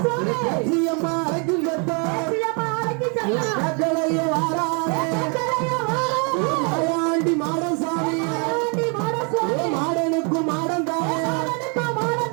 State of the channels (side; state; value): left; quieter; 35.9 dB